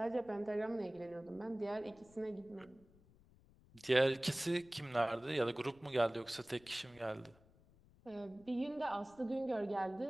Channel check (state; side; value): noise; left; rumble, 26 dB below the sound